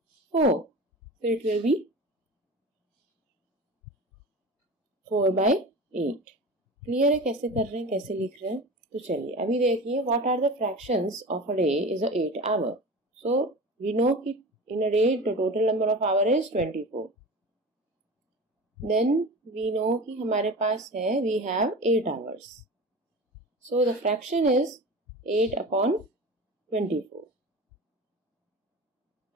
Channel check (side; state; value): both; normal; correlation 0.33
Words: 4. So it will be 4 by 8. Clear है कैसे कर रहे हैं, कैसे लिख रहे हैं? तो चलिए अभी देखिए, what are the fractions of a day is a 8 hour. So we know कि in a day the total number of hour is 24. Then we know कि हमारे पास है, we have 8 hours. So the fraction is 8 upon 24.